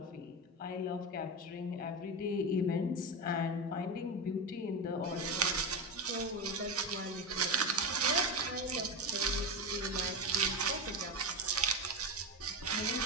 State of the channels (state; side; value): normal; both; correlation 0.16